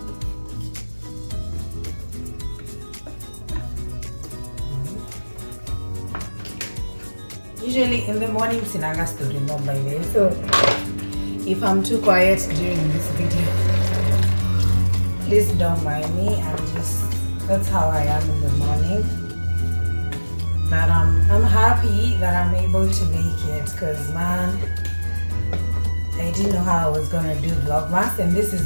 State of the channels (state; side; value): inverted; both; correlation -1.00